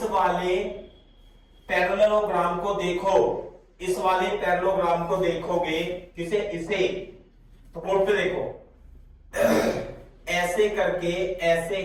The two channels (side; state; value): both; identical; correlation 1.00